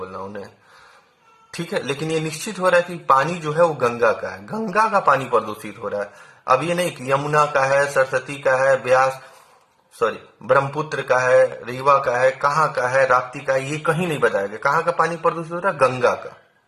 नाउन है। ठीक है, लेकिन ये निश्चित हो रहा है कि पानी जो है वो गंगा का है, गंगा का पानी प्रदूषित हो रहा है। अब ये नहीं कि यमुना का है, सरस्वती का है, ब्रह्मपुत्र का है, रीवा का है, कहाँ का है, राप्ती का है, ये कहीं नहीं बताया गया। कहाँ का पानी प्रदूषित हो रहा है, गंगा का।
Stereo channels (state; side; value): identical; both; correlation 1.00